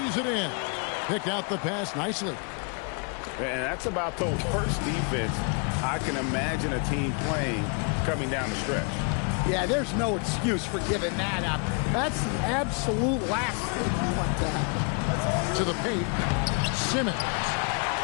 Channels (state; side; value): quieter; right; 37.5 dB